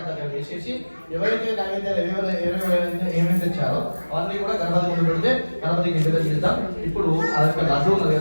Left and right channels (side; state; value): both; inverted; correlation -1.00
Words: దగ్గర వేసేసి ఎవరైతే నైవేద్యాలు ఏమేమి తెచ్చారో అవన్నీ కూడా గణపతి ముందు పెడితే గణపతికి ఇంటి దగ్గర ఇద్దాం. ఇప్పుడు ఆ యొక్క లడ్డు ఉన్నది